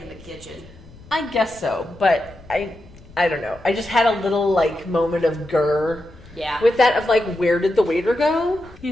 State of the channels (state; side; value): noise; left; rumble, 22 dB below the sound